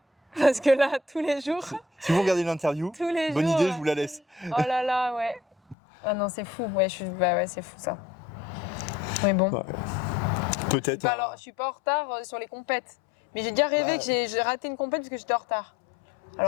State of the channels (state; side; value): drops out; right; at 5.8 s